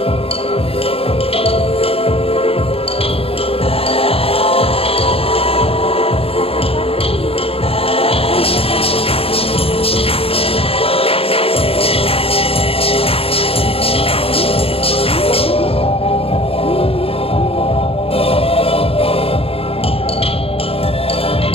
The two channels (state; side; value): late; right; 0.28 ms